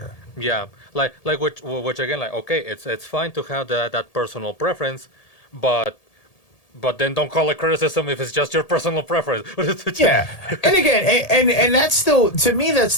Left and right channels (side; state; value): right; late; 1.8 ms